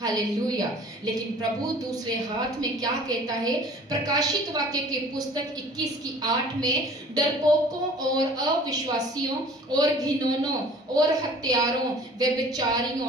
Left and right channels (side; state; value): both; normal; correlation 0.48